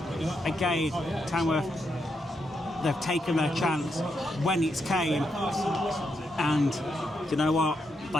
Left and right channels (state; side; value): normal; both; correlation 0.82